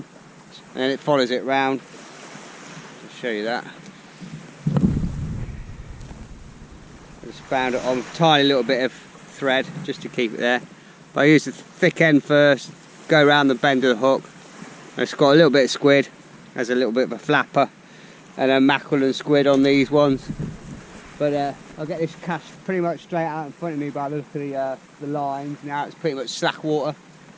and then it follows it round. I'll show you that. I just found it on a tiny little bit of thread just to keep it there, but I use the thick end first, go around the bend of the hook. It's got a little bit of squid, has a little bit of a flapper, and then mackerel and squid on these ones. But I'll get this cast pretty much straight out in front of me by the look of the lines. Now it's pretty much slack water.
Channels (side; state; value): both; identical; correlation 1.00